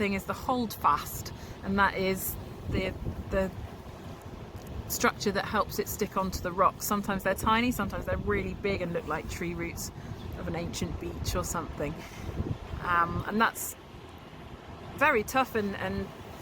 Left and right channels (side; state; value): both; identical; correlation 1.00